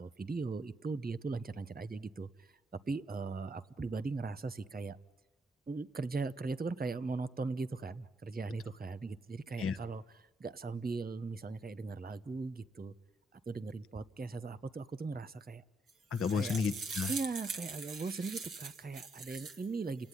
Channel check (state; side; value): normal; both; correlation 0.77